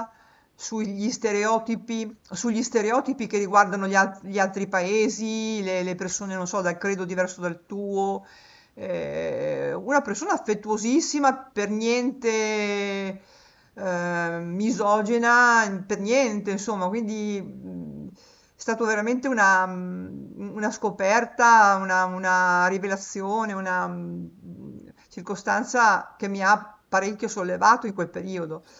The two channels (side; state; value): both; identical; correlation 1.00